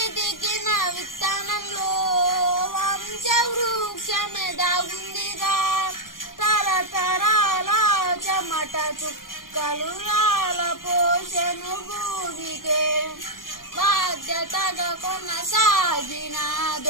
విత్తనంలో వంశ వృక్షమే దాగుందిగా. తరతరాల చెమట చుక్కలు రాల పోషను భూమికే, బాధ్యతగా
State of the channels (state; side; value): late; right; 0.91 ms